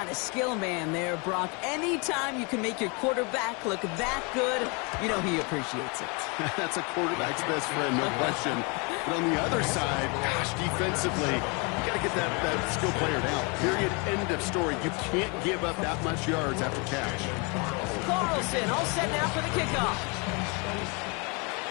the skill man there, Brock. Anytime you can make your quarterback look that good, you know he appreciates it. That's a quarterback's best friend, no question. But on the other side, gosh, defensively, you got to get that skill player down. Period. End of story. You can't give up that much yards after catch. Carlson all set now for the kickoff.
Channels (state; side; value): quieter; right; 31.4 dB